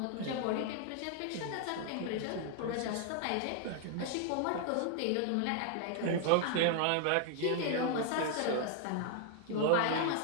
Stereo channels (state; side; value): different; both; correlation 0.00